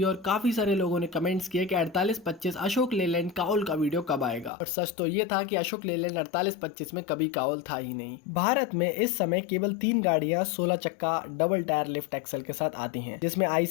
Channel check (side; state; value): right; drops out; at 4.5 s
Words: और काफी सारे लोगों ने कमेंट्स किए कि 4825 अशोक लेलैंड काउल का वीडियो कब आएगा। और सच तो ये था कि अशोक लेलैंड 4825 में कभी काउल था ही नहीं। भारत में इस समय केवल 3 गाड़ियां 16 चक्का डबल टायर लिफ्ट एक्सल के साथ आती हैं, जिसमें